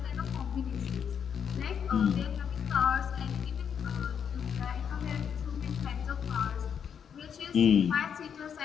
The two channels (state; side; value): quieter; right; 7.7 dB